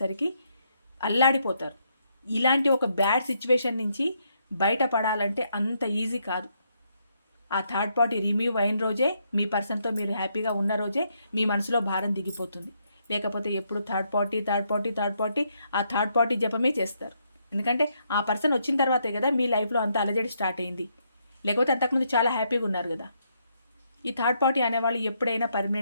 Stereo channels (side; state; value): both; inverted; correlation -0.76